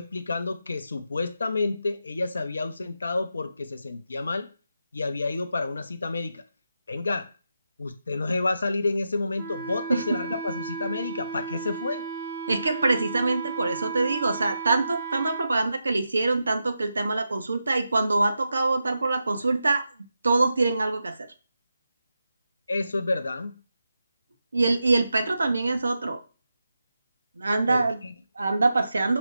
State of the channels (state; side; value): inverted; both; correlation -0.87